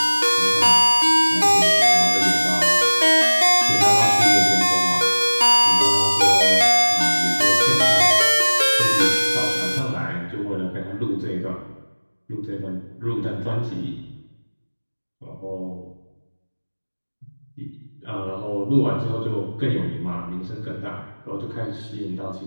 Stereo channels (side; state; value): both; inverted; correlation -1.00